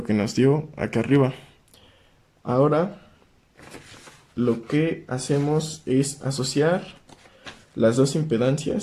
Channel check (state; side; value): identical; both; correlation 1.00